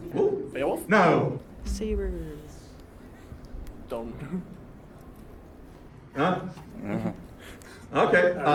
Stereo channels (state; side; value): identical; both; correlation 1.00